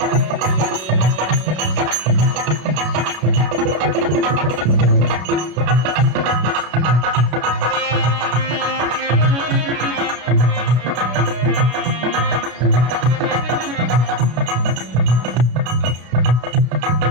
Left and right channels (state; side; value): late; left; 33 ms